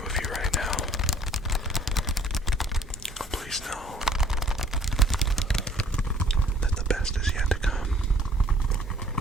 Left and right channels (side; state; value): both; normal; correlation 0.56